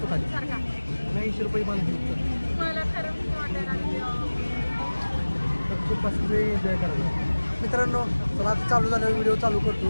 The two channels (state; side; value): inverted; both; correlation -1.00